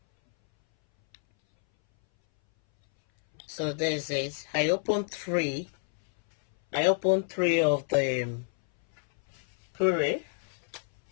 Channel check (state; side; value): silent; right; 59 dB below the other